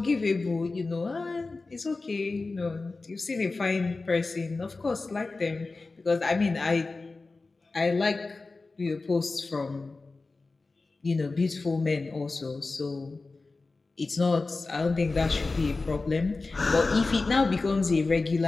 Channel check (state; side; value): quieter; right; 3.6 dB